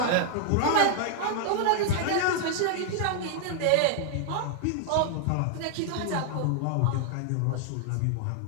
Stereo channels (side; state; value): both; different; correlation 0.00